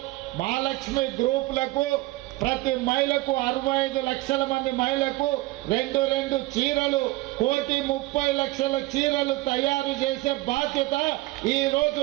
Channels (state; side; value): quieter; left; 20.2 dB